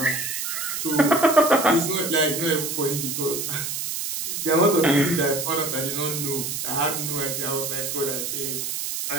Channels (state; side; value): noise; right; hiss, 3 dB below the sound